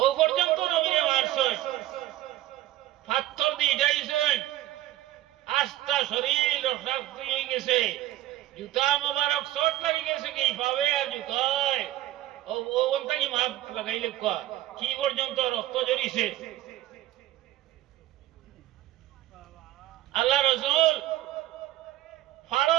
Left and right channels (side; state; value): left; quieter; 14.9 dB